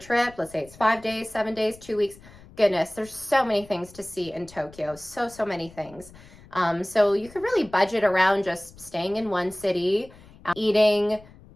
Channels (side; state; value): left; noise; rumble, 22 dB below the sound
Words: let's say it's 5 days, 7 days, 2 weeks, goodness, there's so many things to see in Tokyo, so many things. So you could really budget around just staying in one city, eating